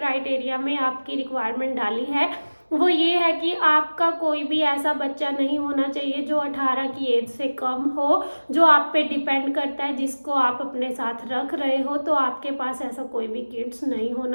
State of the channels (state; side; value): inverted; both; correlation -1.00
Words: में आपकी रिक्वायरमेंट डाली है, वो ये है कि आपका कोई भी ऐसा बच्चा नहीं होना चाहिए जो 18 की एज से कम हो, जो आप पे डिपेंड करता है, जिसको आप अपने साथ रख रहे हो। तो आपके पास ऐसा कोई भी किड्स नहीं